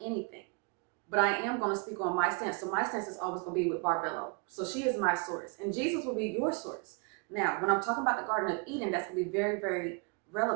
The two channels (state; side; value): quieter; left; 32.7 dB